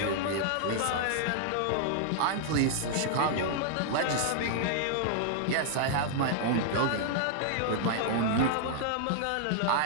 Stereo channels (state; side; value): different; both; correlation -0.01